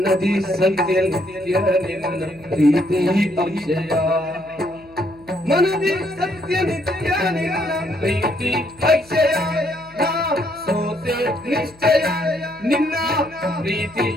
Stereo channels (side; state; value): left; noise; hum, 26 dB below the sound